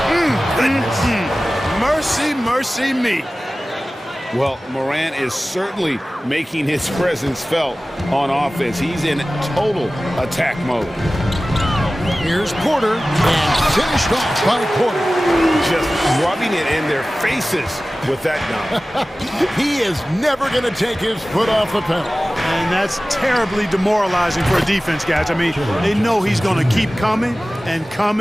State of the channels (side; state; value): both; normal; correlation 0.97